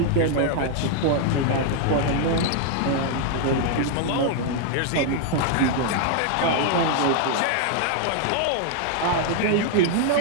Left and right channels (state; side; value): different; both; correlation 0.00